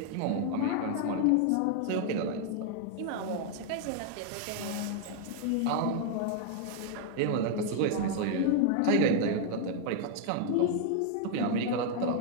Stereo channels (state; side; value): different; both; correlation 0.00